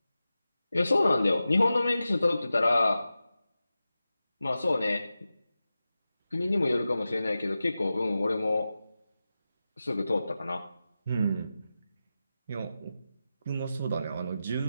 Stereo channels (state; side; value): inverted; both; correlation -0.93